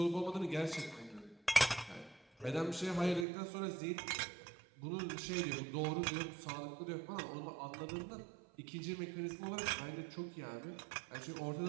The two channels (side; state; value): left; drops out; at 3.2 s